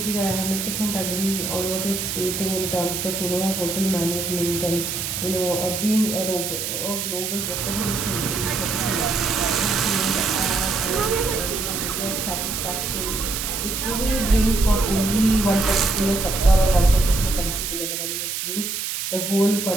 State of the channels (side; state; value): right; noise; hiss, 3 dB below the sound